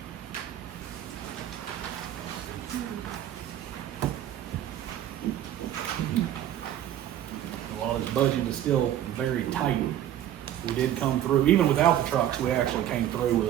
While this budget is still very tight, we did come through, even without the trucks, we actually came through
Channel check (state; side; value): quieter; left; 11.6 dB